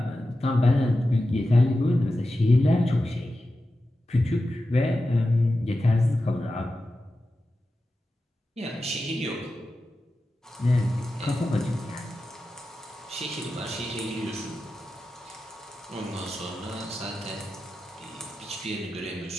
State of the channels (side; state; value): both; normal; correlation 0.92